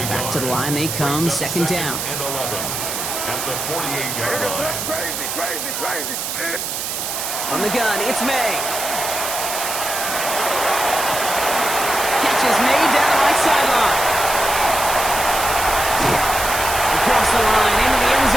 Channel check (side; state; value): right; noise; hiss, 4 dB below the sound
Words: Back to the line they come, 2nd down. And 11 at the 48-yard line. Crazy. From the gun, it's May. Catch is made down the right sideline. Across the line, into the end